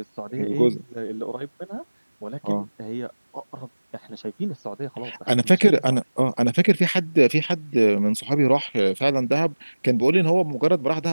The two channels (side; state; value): both; inverted; correlation -1.00